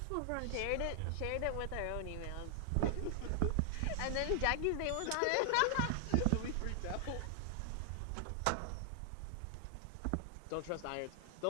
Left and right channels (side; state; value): both; different; correlation 0.00